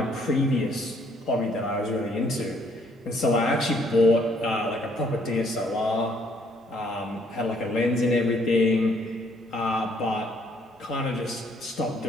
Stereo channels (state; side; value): normal; both; correlation 0.66